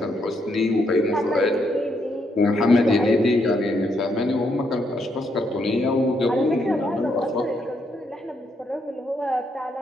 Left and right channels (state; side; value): normal; both; correlation 0.76